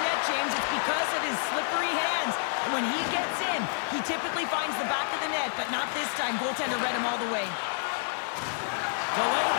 net, James. It's because of his slippery hands. And when he gets in, he typically finds the back of the net, but not this time. Goaltender read him all the way. Delayed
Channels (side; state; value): right; silent; digital silence